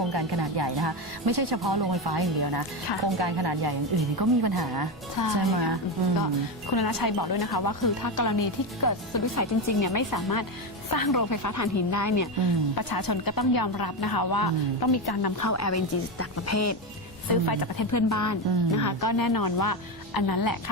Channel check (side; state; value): both; normal; correlation 0.13